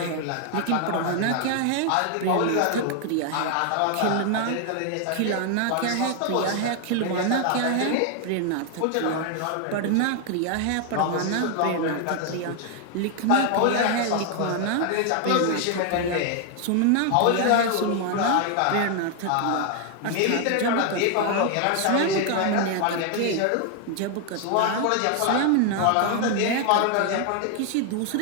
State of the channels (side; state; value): both; different; correlation 0.00